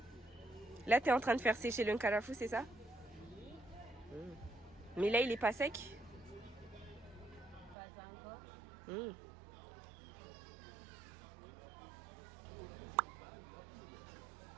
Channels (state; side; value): drops out; left; at 7.8 s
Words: Là t'es en train de faire sécher le nkarafou, c'est ça? Mais là, il est pas sec? Pas encore.